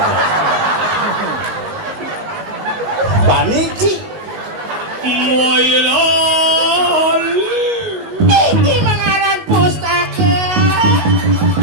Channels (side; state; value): left; late; 19 ms